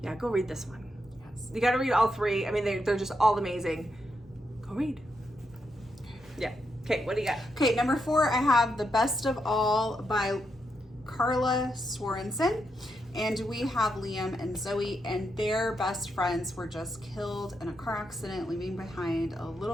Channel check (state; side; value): normal; both; correlation 0.82